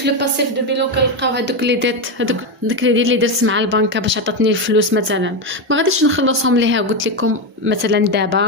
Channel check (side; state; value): both; normal; correlation 0.10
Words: لو باسيف دو بيلون كنلقاو هذوك لي ديت، هذوك داك لي دير اللي درت مع البنكه باش عطاتني الفلوس مثلا، ما غاديش نخلصهم ليها. قلت لكم مثلا